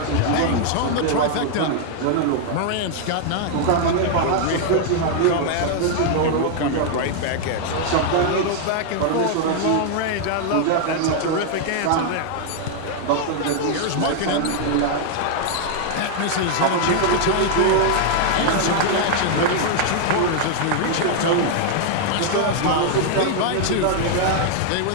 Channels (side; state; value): both; different; correlation 0.00